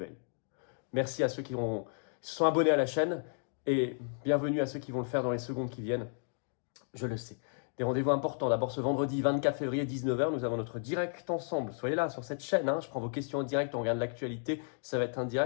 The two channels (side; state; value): right; silent; digital silence